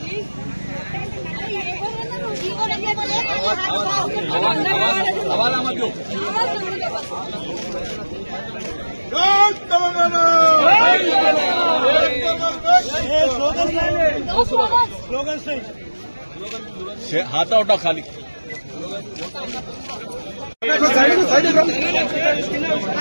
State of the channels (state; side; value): inverted; both; correlation -1.00